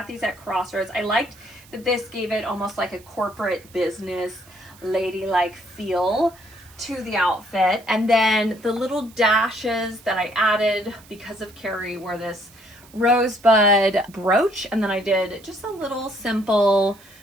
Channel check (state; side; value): noise; right; hiss, 25 dB below the sound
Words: these at Crossroads. I liked that this gave it almost like a corporate business ladylike feel to the outfit. And then the little dashes that I added because of Carrie were this rosebud brooch, and then I did just a little simple